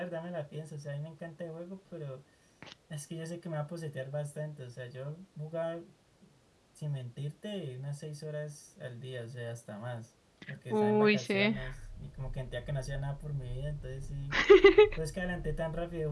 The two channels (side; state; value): both; identical; correlation 1.00